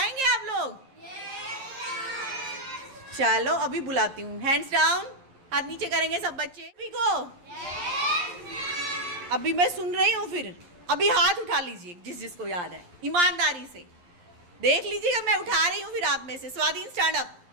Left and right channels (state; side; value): late; left; 11 ms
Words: आप लोग? चलो अभी बुलाती हूँ। हैंड्स डाउन, हाथ नीचे करेंगे सब बच्चे। अभी को अभी मैं सुन रही हूँ, फिर अभी हाथ उठा लीजिए जिस जिसको याद है, ईमानदारी से देख लीजिएगा। मैं उठा रही हूँ, फिर आप में से स्वाधीन स्टैंड अप,